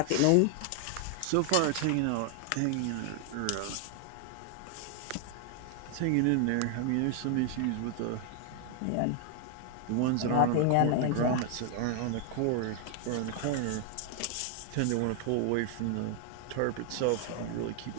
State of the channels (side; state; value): both; different; correlation 0.00